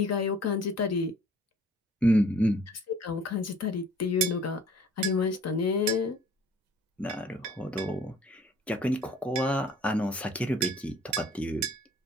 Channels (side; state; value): both; normal; correlation 0.53